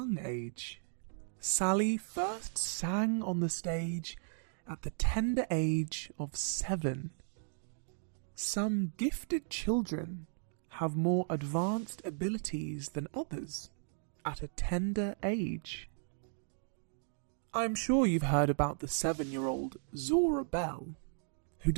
age. Sally first sang on the stage at the tender age of 7. Some gifted children have more advanced abilities than others at a tender age. I'm sure you've heard about the 7-year-old Zora Bell, who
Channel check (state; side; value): silent; left; digital silence